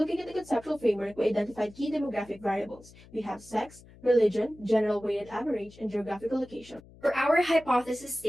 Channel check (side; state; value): left; noise; hum, 23 dB below the sound